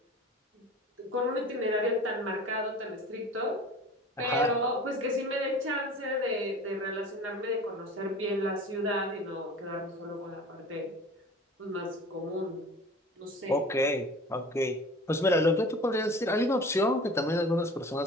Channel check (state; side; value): normal; both; correlation 0.41